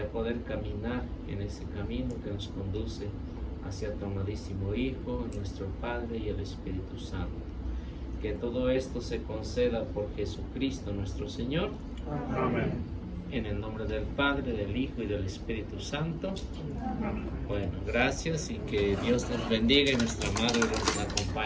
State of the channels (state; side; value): identical; both; correlation 1.00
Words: poder caminar en ese camino que nos conduce hacia tu amadísimo Hijo, nuestro Padre y el Espíritu Santo. Que todo esto se conceda por Jesucristo nuestro Señor. Amén. En el nombre del Padre, del Hijo y del Espíritu Santo. Bueno, gracias, y que Dios nos bendiga y nuestra Madre nos